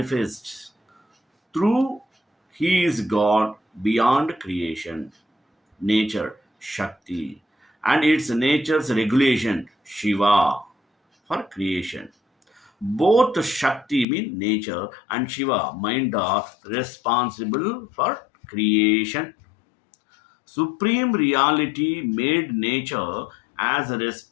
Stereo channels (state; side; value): drops out; right; at 14.1 s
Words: through he is God beyond creation, nature, Shakti, and its nature's regulation, Shiva, for creation. Both Shakti mean nature and Shiva mind are responsible for creation. Supreme reality made nature as a